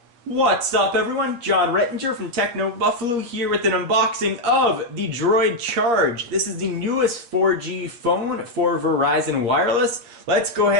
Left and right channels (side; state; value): left; late; 8.5 ms